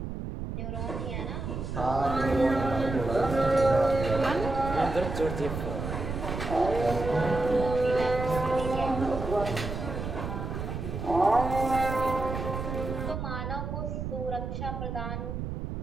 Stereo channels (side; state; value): right; noise; rumble, 5 dB below the sound